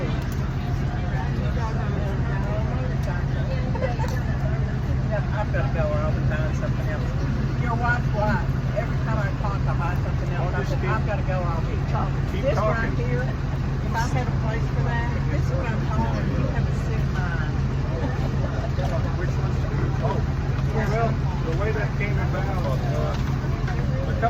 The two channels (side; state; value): both; identical; correlation 1.00